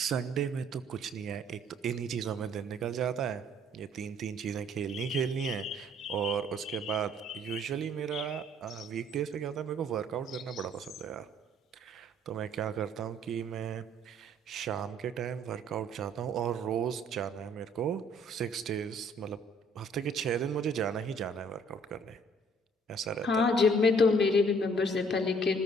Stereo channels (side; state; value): both; normal; correlation 0.60